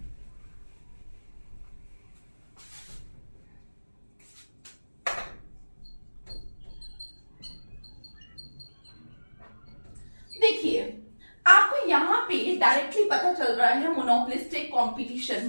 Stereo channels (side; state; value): both; inverted; correlation -1.00